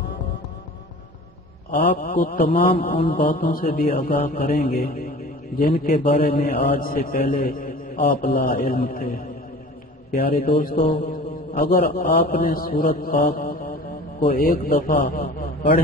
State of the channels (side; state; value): both; normal; correlation 0.41